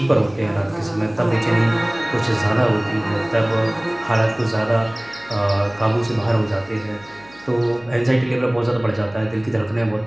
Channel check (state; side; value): noise; right; hum, 26 dB below the sound